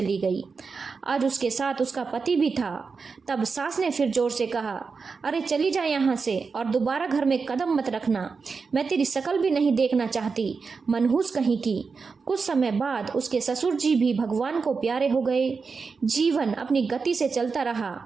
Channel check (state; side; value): quieter; left; 4.9 dB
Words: गई। आज उसके साथ उसका पति भी था। तब सास ने फिर जोर से कहा, अरे चली जा यहाँ से और दोबारा घर में कदम मत रखना। मैं तेरी शकल भी नहीं देखना चाहती, मनहूस कहीं की। कुछ समय बाद उसके ससुर जी भी भगवान को प्यारे हो गए। जीवन अपनी गति से चलता रहा।